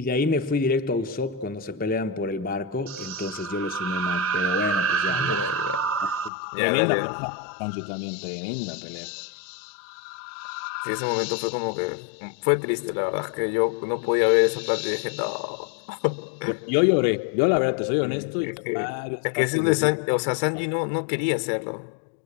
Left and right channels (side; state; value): right; drops out; at 6.3 s